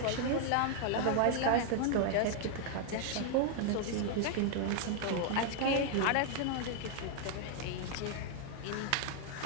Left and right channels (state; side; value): different; both; correlation 0.00